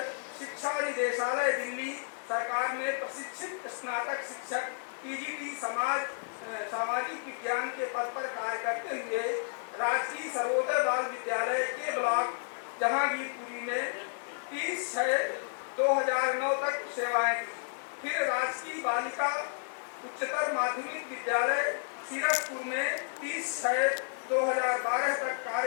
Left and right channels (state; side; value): silent; right; digital silence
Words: शिक्षा निदेशालय दिल्ली सरकार में प्रशिक्षित स्नातक शिक्षक पीजीटी सामाजिक विज्ञान के पद पर कार्य करते हुए राजकीय सर्वोदय बाल विद्यालय के ब्लॉक जहांगीरपुरी में 30/6/2009 तक सेवाएं दी। फिर राजकीय बालिका उच्चतर माध्यमिक विद्यालय सीरसपुर में 30/6/2012 तक